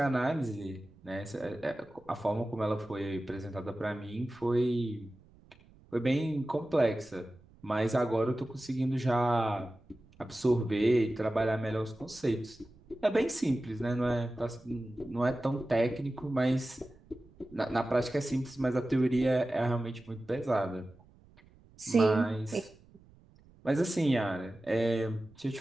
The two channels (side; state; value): right; noise; rumble, 26 dB below the sound